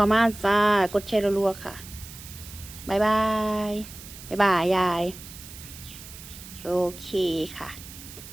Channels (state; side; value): noise; right; hiss, 15 dB below the sound